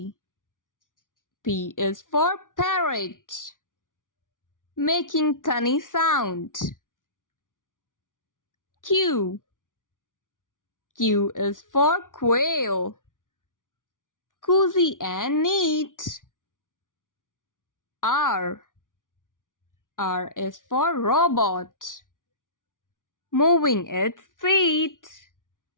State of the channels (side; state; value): right; late; 0.88 ms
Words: P is for parrot, making funny sound. Q. Q is for quail, cozy and neat. R. R is for robot, moving its feet.